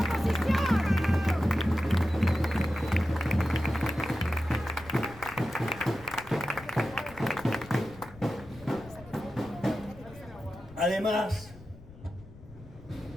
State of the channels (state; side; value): noise; left; rumble, 19 dB below the sound